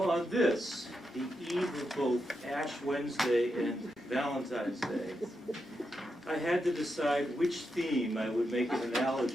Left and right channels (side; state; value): both; normal; correlation 0.85